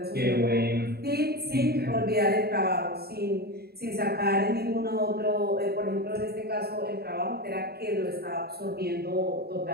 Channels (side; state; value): left; late; 0.46 ms